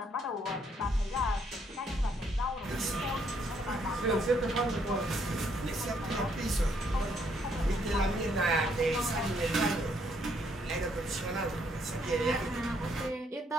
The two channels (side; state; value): both; normal; correlation 0.70